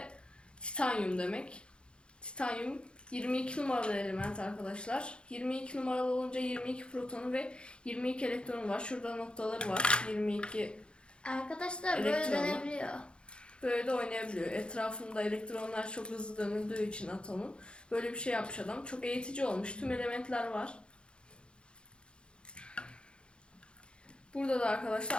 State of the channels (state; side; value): late; right; 0.055 ms